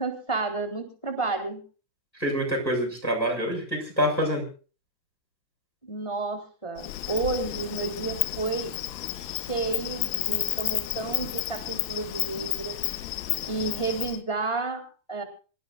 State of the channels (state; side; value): late; right; 1.5 ms